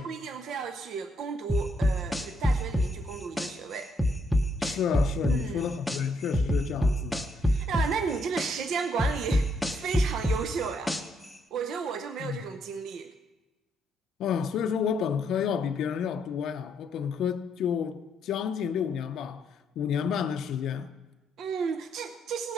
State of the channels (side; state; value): both; normal; correlation 0.73